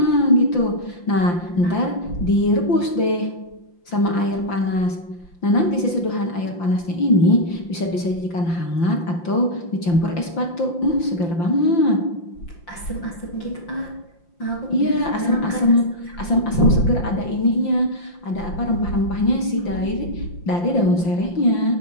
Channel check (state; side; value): late; right; 5.8 ms